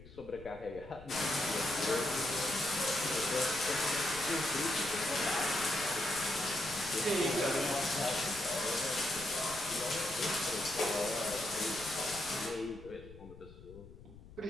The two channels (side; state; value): left; noise; rumble, 18 dB below the sound